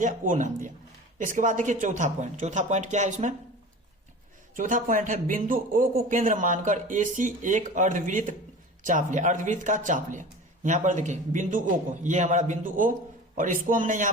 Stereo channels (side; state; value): both; normal; correlation 0.37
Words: O नाम दिया। इसके बाद देखिए चौथा पॉइंट क्या है इसमें, चौथा पॉइंट है बिंदु O को केंद्र मानकर AC एक अर्धवृत्त चाप लिया, अर्धवृत्त का चाप लिया। यहाँ पर देखिए बिंदु O को, ये हमारा बिंदु O और इसको हमने